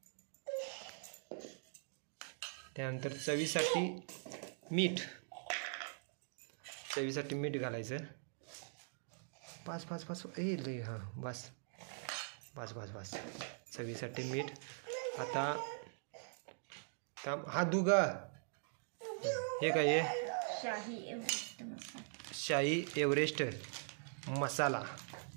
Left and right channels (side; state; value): left; silent; digital silence